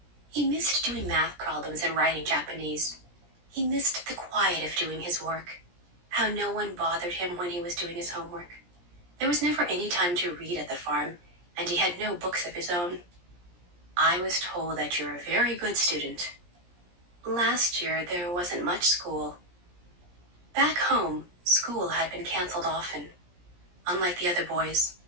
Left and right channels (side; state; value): left; late; 17 ms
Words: He missed doing math problems and writing Japanese. He missed the quiet of doing his work, how no one bothered him when he was doing his homework. There was never any time to read at the farm, and he had no books of his own. I was told that you're a very good student. Last year, there wasn't much school. Back home, school had been canceled often. Unlike the other boys,